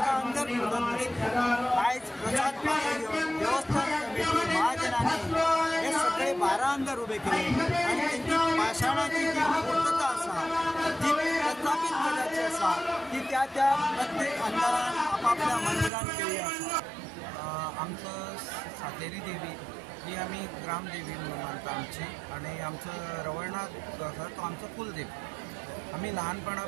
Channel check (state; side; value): drops out; left; at 15.9 s